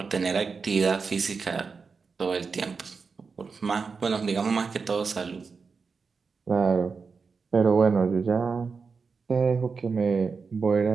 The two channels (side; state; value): left; quieter; 5.0 dB